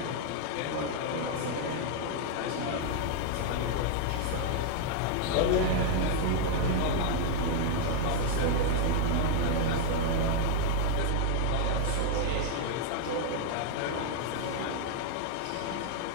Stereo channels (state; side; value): different; both; correlation 0.00